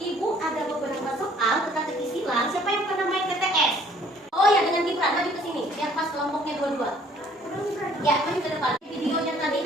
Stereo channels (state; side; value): normal; both; correlation 0.58